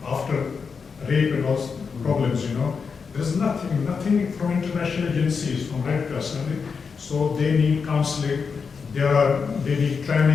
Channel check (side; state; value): right; quieter; 5.5 dB